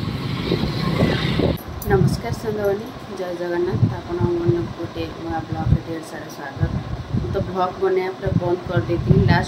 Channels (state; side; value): identical; both; correlation 1.00